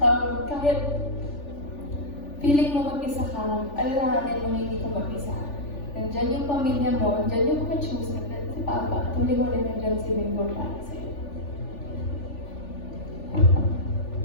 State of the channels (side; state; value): right; late; 3.4 ms